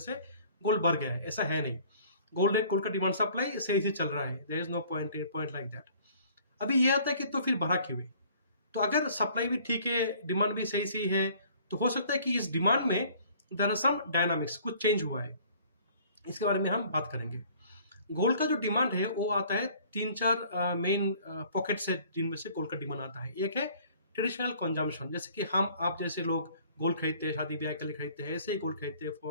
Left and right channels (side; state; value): both; inverted; correlation -0.54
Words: गोल्ड बढ़ गया है, ऐसा है नहीं। गोल्ड का डिमांड सप्लाई सही से चल रहा है, there is no point like that. अभी ये आता है कि तो फिर बढ़ा क्यों है। तो अगर सप्लाई भी ठीक है, डिमांड भी सही सी है, तो हो सकता है कि इस डिमांड में देयर आर सम डायनामिक्स, कुछ चेंज हुआ है। इसके बारे में हम बात करेंगे। गोल्ड का जो डिमांड है वो आता है 3-4 मेन पॉकेट से, जिनमें से गोल्ड का डिमांड आता है। एक है ट्रेडिशनल कंजम्पशन, जैसे कि आप जैसे लोग गोल्ड खरीदते हैं, शादी ब्याह के लिए खरीदते हैं, ऐसे ही गोल्ड खरीदते हैं